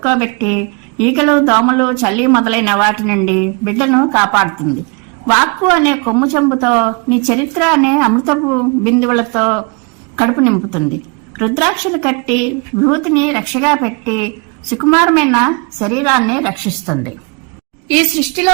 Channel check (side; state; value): left; quieter; 31.6 dB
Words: ఈగలు, దోమలు, చల్లి మొదలైన వాటి నుండి బిడ్డను కాపాడుతుంది. వాక్కు అనే కొమ్ము చెంబుతో నీ చరిత్ర అనే అమృతపు బిందువులతో కడుపు నింపుతుంది. రుద్రాక్షలు కట్టి విభూతిని రక్షగా పెట్టి సుకుమారమైన శరీరాన్ని రక్షిస్తుంది. ఈ